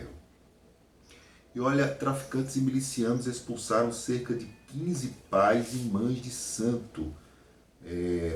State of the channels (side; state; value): both; identical; correlation 1.00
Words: E olha, traficantes e milicianos expulsaram cerca de 15 pais e mães de santo